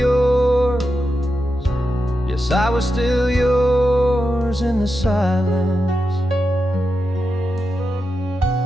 yes, I was still yours in the silence.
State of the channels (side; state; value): both; normal; correlation 0.88